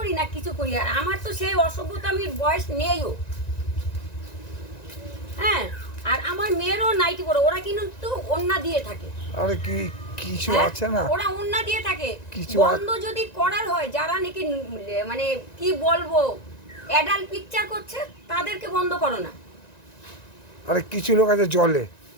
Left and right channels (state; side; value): late; right; 1.9 ms